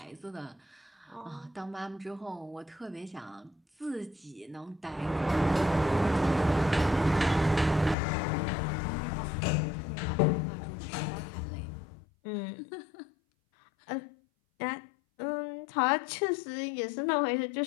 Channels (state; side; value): drops out; right; at 8.0 s